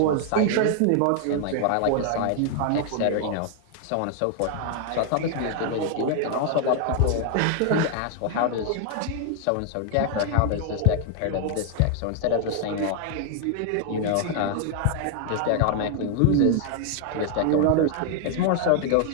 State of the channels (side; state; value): both; different; correlation 0.00